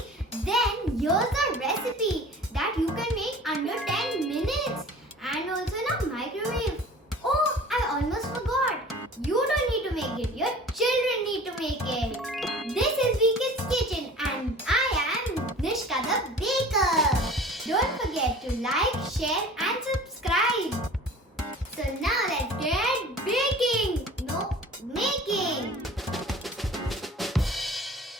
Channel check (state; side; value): normal; both; correlation 0.43